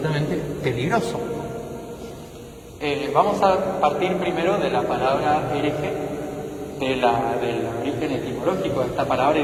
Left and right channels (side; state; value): both; identical; correlation 1.00